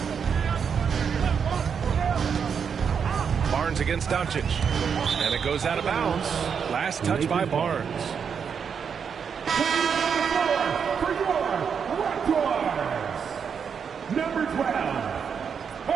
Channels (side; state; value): left; quieter; 6.8 dB